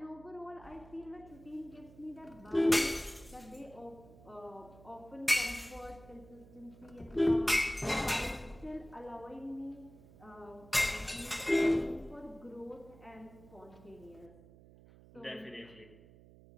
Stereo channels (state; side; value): noise; right; hum, 21 dB below the sound